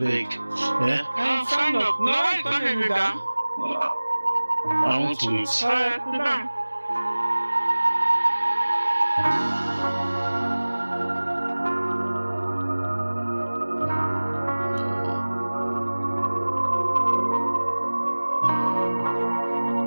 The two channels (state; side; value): inverted; both; correlation -1.00